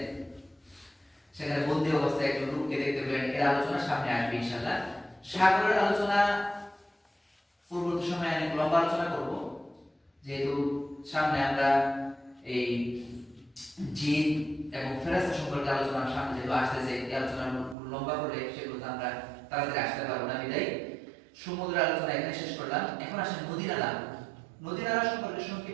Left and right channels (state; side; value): drops out; left; at 17.8 s